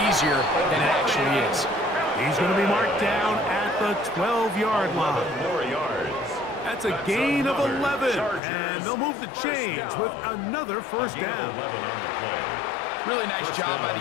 easier than it actually is. He's going to be marked down at the 12-yard line. More yards. That's a gain of 11, and they'll move the chains with another 1st down. Really nice job by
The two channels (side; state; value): right; drops out; at 8.4 s